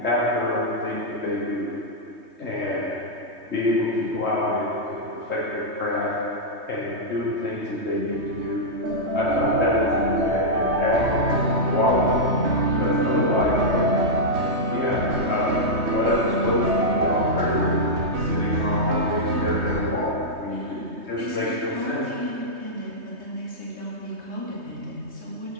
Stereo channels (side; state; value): left; late; 3.2 ms